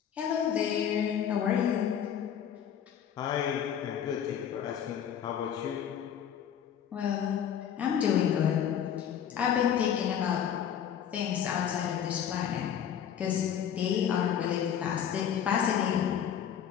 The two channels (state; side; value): quieter; right; 9.0 dB